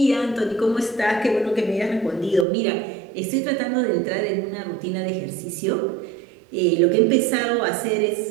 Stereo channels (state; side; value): drops out; left; at 2.5 s